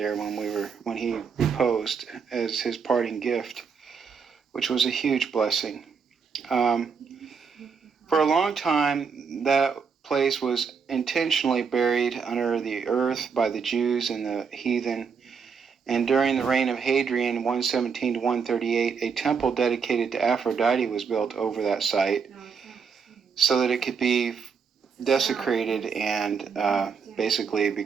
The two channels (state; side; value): quieter; left; 6.0 dB